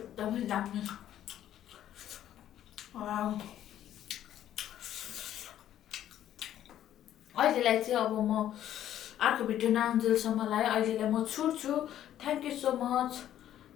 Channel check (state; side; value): quieter; right; 11.6 dB